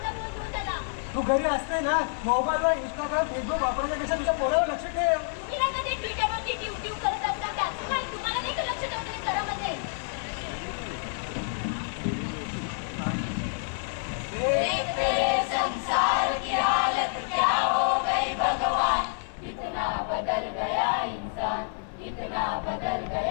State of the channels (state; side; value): silent; right; digital silence